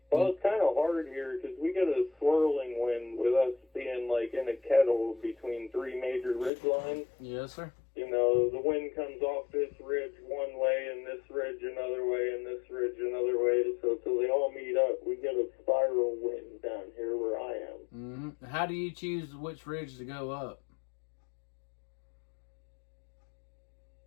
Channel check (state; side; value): drops out; right; at 6.5 s